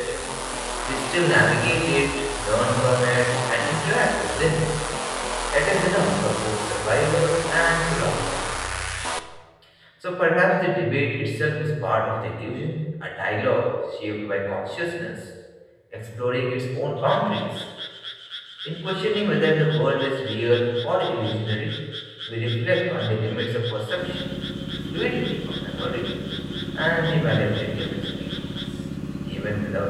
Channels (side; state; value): both; identical; correlation 1.00